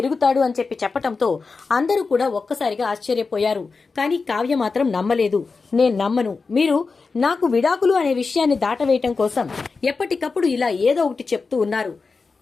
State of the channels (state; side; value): quieter; right; 4.4 dB